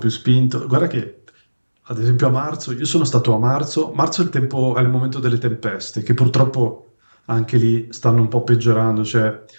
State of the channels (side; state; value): both; inverted; correlation -1.00